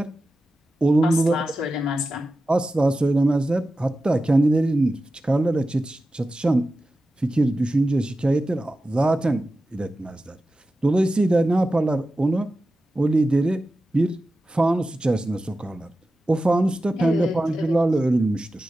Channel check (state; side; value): normal; both; correlation 0.93